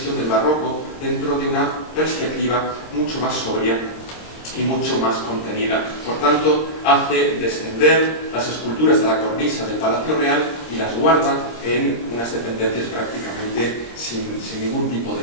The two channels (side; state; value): right; late; 26 ms